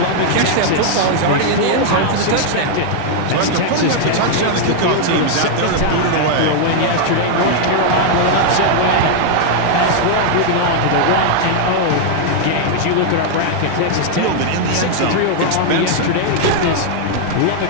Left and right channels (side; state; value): both; different; correlation 0.00